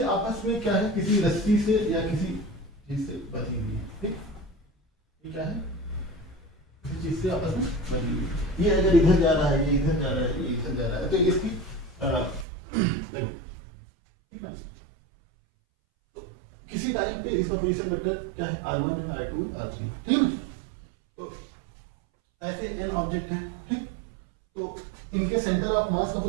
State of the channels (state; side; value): drops out; left; at 12.5 s